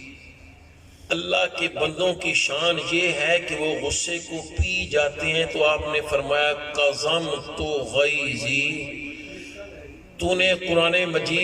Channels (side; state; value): both; identical; correlation 1.00